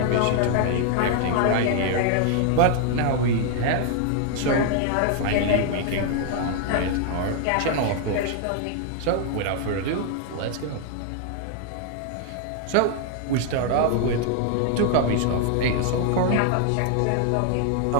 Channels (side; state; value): both; different; correlation 0.00